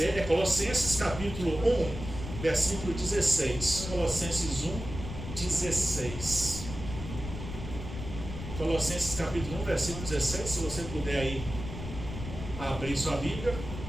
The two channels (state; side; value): noise; left; rumble, 9 dB below the sound